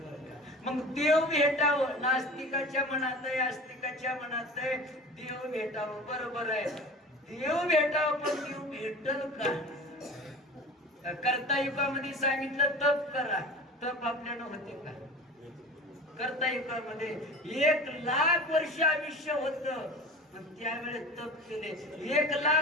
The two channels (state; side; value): normal; both; correlation 0.37